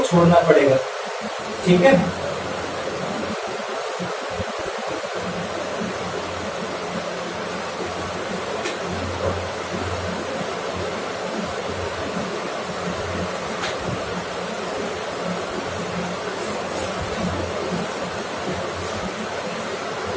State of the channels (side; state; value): both; identical; correlation 1.00